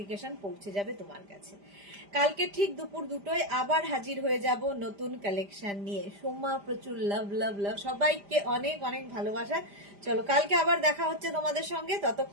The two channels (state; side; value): late; left; 5.0 ms